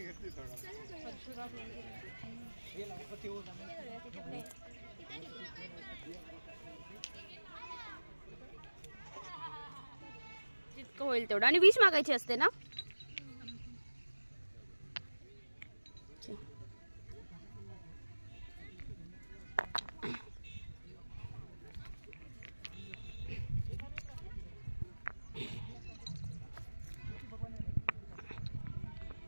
जितकं होईल तेवढं. आणि विष मागायची असते ना.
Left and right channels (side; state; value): both; inverted; correlation -1.00